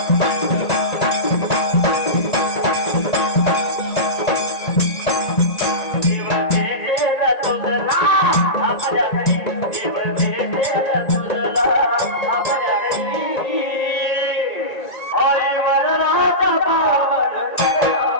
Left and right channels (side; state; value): right; late; 1.9 ms